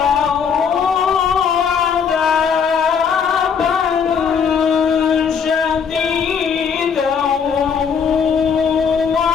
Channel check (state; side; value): quieter; right; 6.6 dB